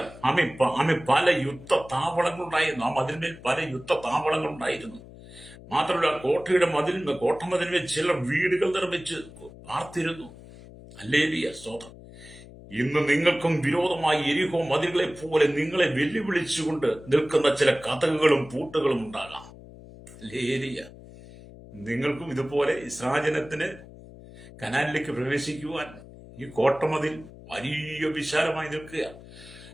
പല യുദ്ധ താവളങ്ങളുണ്ടായിരുന്നു. ആ മതിലിന്മേൽ പല യുദ്ധ താവളങ്ങളുണ്ടായിരുന്നു. മാത്രമല്ല, കോട്ടമതിലിന്മേൽ ചിലർ വീടുകൾ നിർമ്മിച്ച് പാർത്തിരുന്നു. ഹല്ലേലൂയ, സ്തോത്രം. ഇന്ന് നിങ്ങൾക്കും വിരോധമായി യെരിഹോ മതിലുകളെ പോലെ നിങ്ങളെ വെല്ലുവിളിച്ചുകൊണ്ട് നിൽക്കുന്ന ചില കതകുകളും പൂട്ടുകളും ഉണ്ടാകാം. ഹല്ലേലൂയ. നിങ്ങൾക്കും ഇതുപോലെ ഇസ്രായേലിന് കനാനിലേക്ക് പ്രവേശിക്കുവാൻ ഈ കോട്ടമതിൽ വലിയ വിശാലമായി നിൽക്കുക.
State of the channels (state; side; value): noise; left; hum, 18 dB below the sound